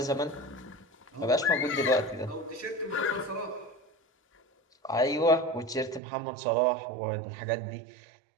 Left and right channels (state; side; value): drops out; left; at 6.0 s